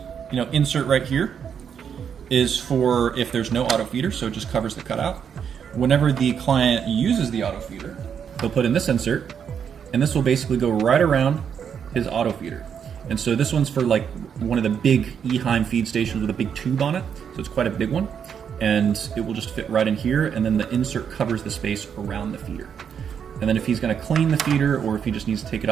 insert right here is for if there's no auto feeder, so it just covers the cutout. Whenever the client uses the auto feeder, they'll put in this insert, and this will basically go right around his auto feeder. And so this one's for like one of the big Eheim feed stations with a big tube on it. So it's quite a big one. And it will just fit right in here. And then the insert covers the space around the feeder. And then if he's going to clean the feeder, or if he just needs to take it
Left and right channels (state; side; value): quieter; left; 7.7 dB